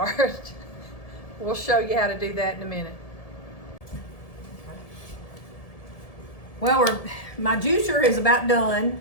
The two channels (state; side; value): late; right; 1.7 ms